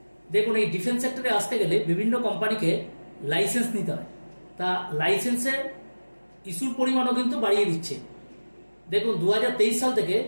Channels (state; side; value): inverted; both; correlation -1.00